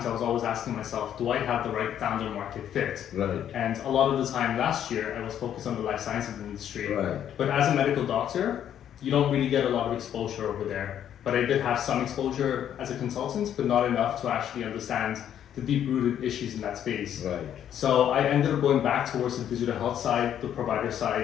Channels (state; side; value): quieter; right; 10.0 dB